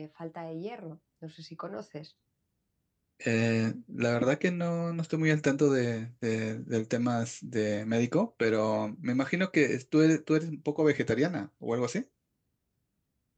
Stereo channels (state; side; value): identical; both; correlation 1.00